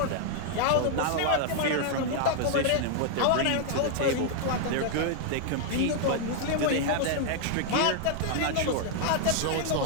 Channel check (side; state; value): both; different; correlation 0.00